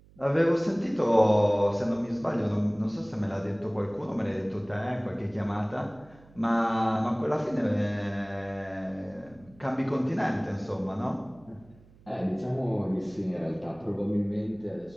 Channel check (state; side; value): noise; right; hum, 26 dB below the sound